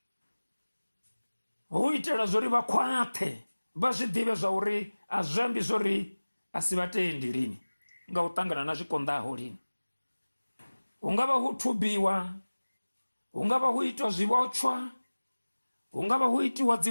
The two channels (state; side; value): inverted; both; correlation -1.00